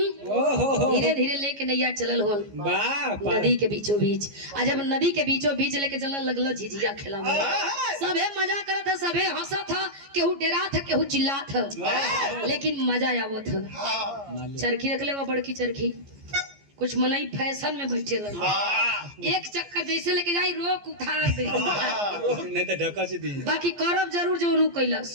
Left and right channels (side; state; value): left; late; 14 ms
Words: धीरे धीरे लेके नैया चलल हो नदी के बीचों बीच। आ जब नदी के बीचों बीच लेके चलने लगल झिझिया खेला सबे मजा करत था सबे हंसत था केहू डेरा था केहू चिल्ला था लेकिन मजा आवत था। चरखी रख ले वो बड़की चरखी कुछ मनई फैशन में बैठे लगे एक चक्कर जैसे लेके जाई रोक उठार दे नहीं तो ढका से दी बाकी करब जरूर जो रू कैलस